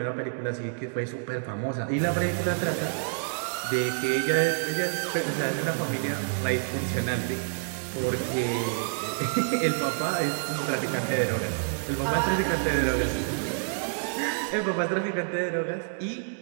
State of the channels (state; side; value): silent; left; digital silence